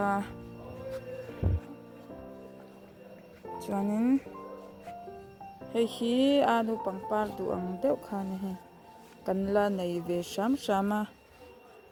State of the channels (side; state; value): both; identical; correlation 1.00